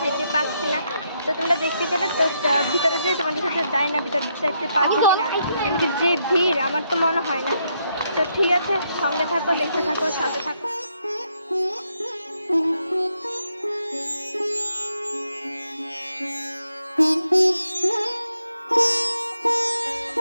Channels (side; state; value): both; inverted; correlation -0.78